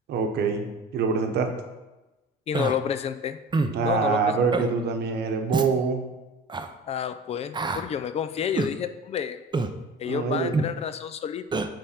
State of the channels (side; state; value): both; normal; correlation 0.38